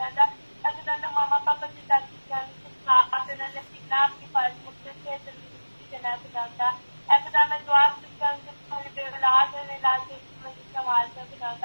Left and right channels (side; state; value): both; inverted; correlation -1.00